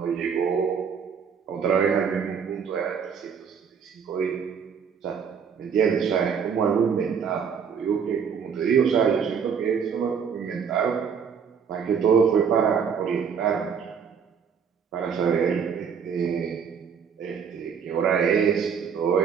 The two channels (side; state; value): left; quieter; 6.8 dB